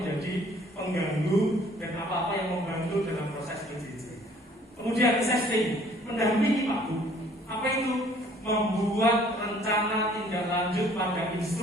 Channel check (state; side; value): normal; both; correlation 0.57